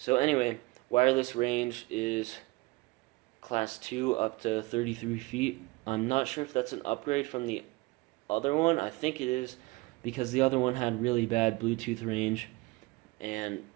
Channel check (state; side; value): quieter; left; 22.6 dB